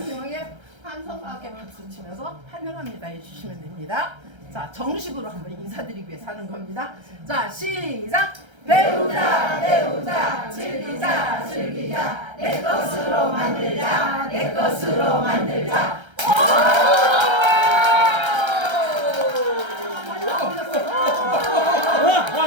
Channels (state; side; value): late; left; 1.3 ms